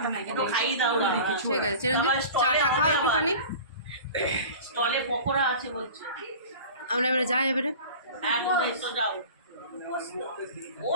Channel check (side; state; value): both; inverted; correlation -0.38